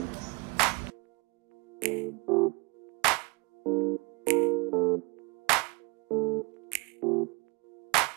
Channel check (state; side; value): quieter; left; 29.2 dB